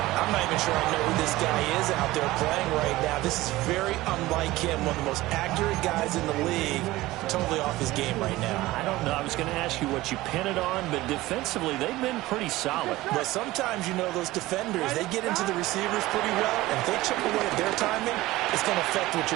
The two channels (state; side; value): quieter; left; 18.0 dB